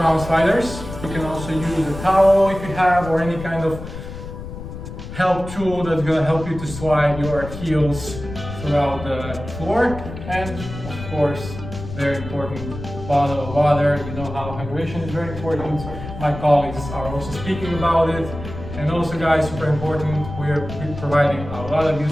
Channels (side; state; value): left; noise; rumble, 10 dB below the sound